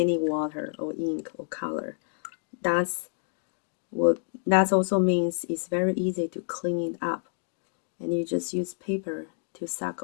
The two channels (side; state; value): right; silent; digital silence